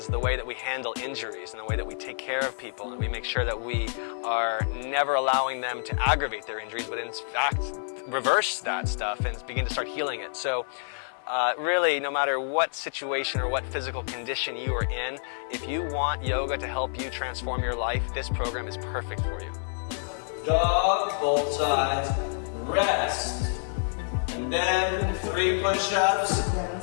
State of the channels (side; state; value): right; silent; 59 dB below the other